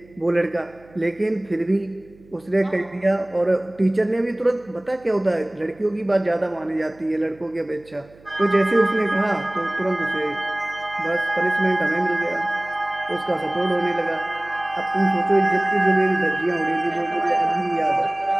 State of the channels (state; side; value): noise; right; hum, 26 dB below the sound